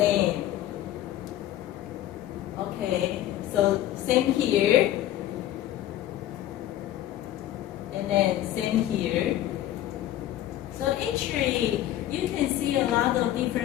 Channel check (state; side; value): quieter; right; 13.1 dB